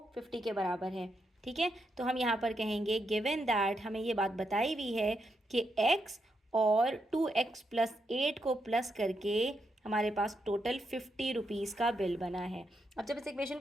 50 के बराबर है। ठीक है, तो हम यहाँ पर कहेंगे गिवन दैट, हमें ये बात बताई हुई है कि x और 2x प्लस 8 को प्लस करके हमारे पास टोटल ₹50 का बिल बना है। अब जब इस इक्वेशन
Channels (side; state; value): both; normal; correlation 0.82